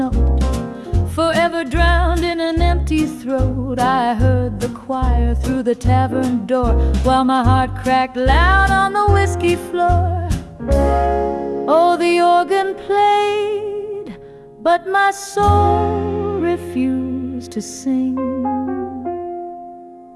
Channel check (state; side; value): identical; both; correlation 1.00